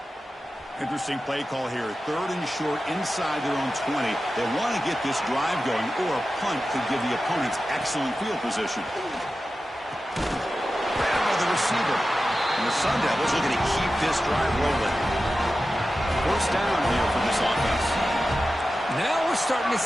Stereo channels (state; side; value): normal; both; correlation 0.93